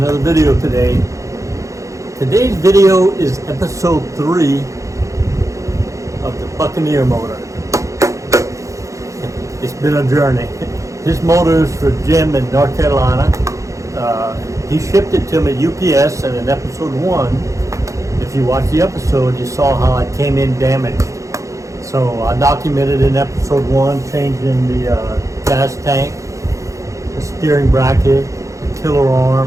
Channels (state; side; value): late; left; 0.15 ms